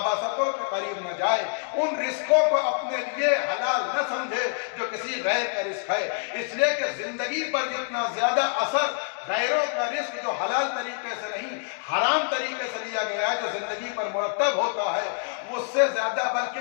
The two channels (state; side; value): silent; right; 61 dB below the other